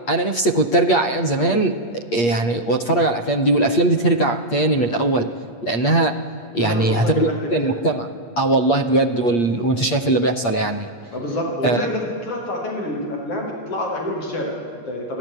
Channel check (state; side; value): late; right; 8.5 ms